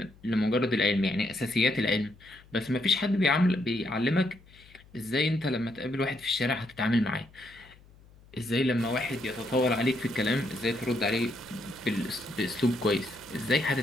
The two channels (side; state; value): left; noise; hum, 25 dB below the sound